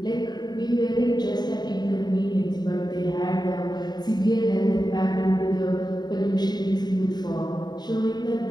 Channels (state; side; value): late; right; 0.20 ms